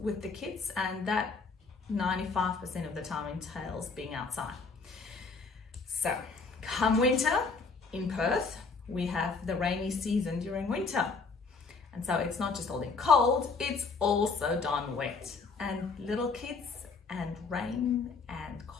the kids, and that 95% of the time entails being outside. So come winter in Perth, we have the rainy season during winter. And so it's not just all in cold, it's also darn wet. And little kids and rain and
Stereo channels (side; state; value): right; quieter; 4.5 dB